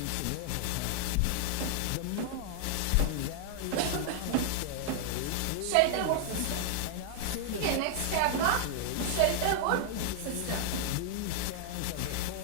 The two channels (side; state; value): both; different; correlation -0.01